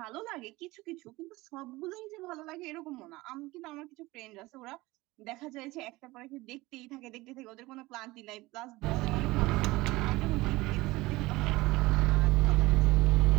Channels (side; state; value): left; quieter; 20.3 dB